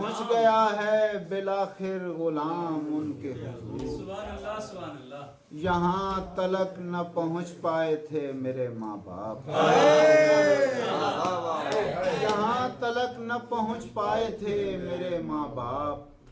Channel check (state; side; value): identical; both; correlation 1.00